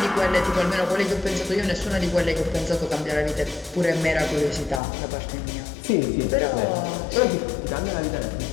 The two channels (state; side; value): drops out; right; at 4.8 s